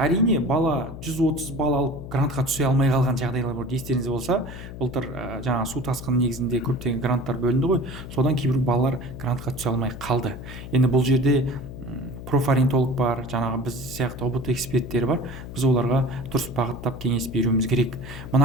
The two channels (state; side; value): noise; left; hum, 11 dB below the sound